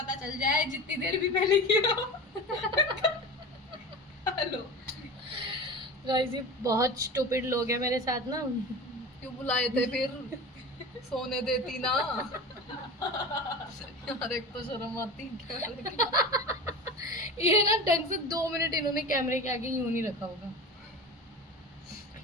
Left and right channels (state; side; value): normal; both; correlation 0.31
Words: चल जाए जितनी देर भी पहले किया हो। हेलो, गाइस ये बहुत स्टूपिड लोग हैं मेरे साथ ना। क्यों बुलाए थे फिर? सोने देती ना यार, एक तो शर्म आती क्या। ये ना ढंग से 2 मिनट इन्होंने कैमरे के आगे यूं नहीं रखा होगा।